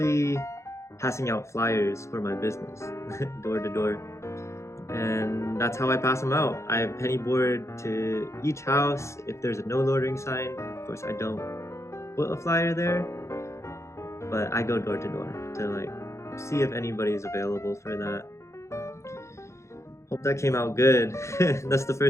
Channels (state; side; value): late; right; 0.14 ms